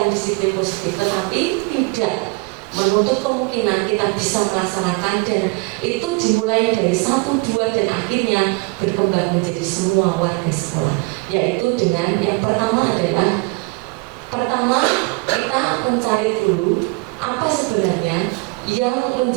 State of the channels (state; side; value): quieter; left; 27.2 dB